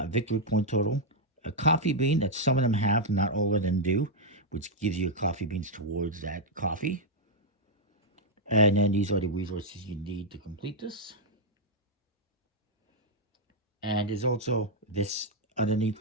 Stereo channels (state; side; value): normal; both; correlation -0.02